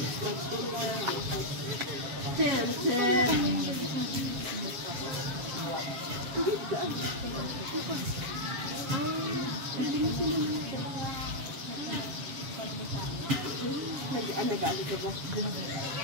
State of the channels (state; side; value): late; left; 7.3 ms